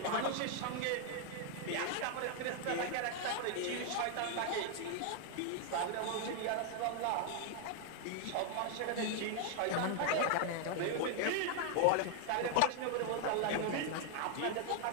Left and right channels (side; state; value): both; different; correlation 0.00